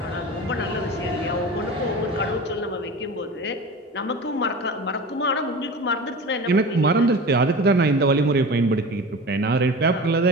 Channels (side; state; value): both; normal; correlation 0.33